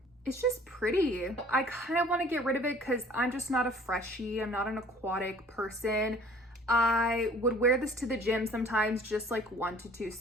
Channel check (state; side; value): normal; both; correlation 0.52